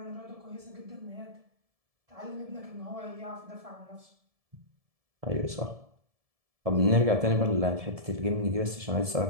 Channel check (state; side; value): late; left; 1.7 ms